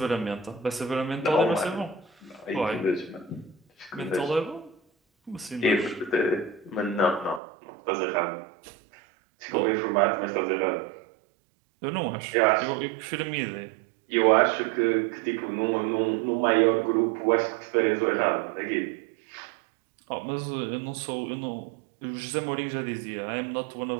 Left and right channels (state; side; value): drops out; left; at 7.4 s